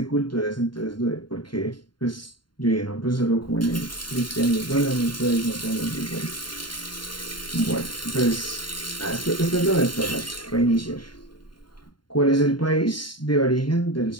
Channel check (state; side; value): late; right; 0.72 ms